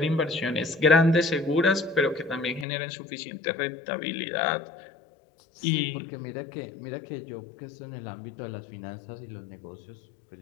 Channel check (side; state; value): right; drops out; at 2.7 s